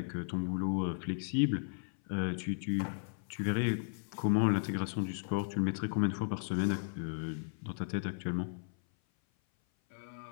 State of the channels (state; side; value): silent; right; 54 dB below the other